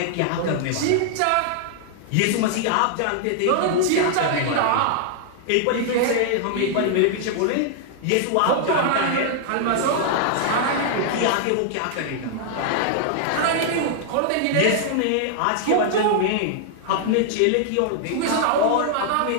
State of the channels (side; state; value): both; different; correlation -0.01